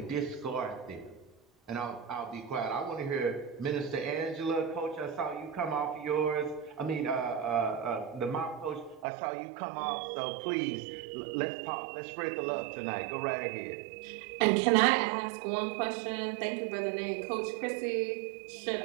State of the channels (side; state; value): left; drops out; at 9.1 s